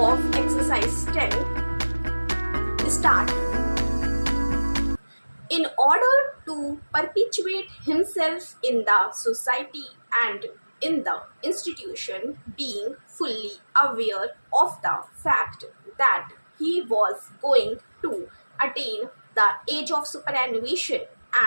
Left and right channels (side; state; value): both; inverted; correlation -1.00